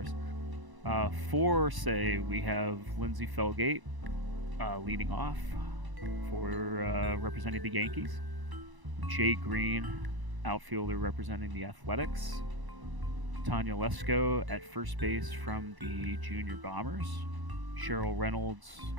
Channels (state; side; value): late; left; 1.0 ms